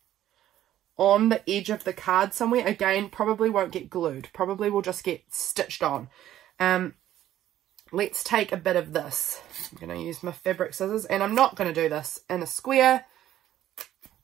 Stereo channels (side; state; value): left; quieter; 12.6 dB